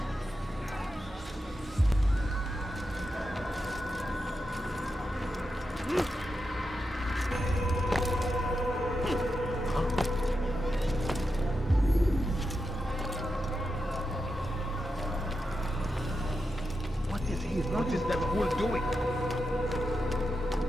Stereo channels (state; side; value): normal; both; correlation 0.88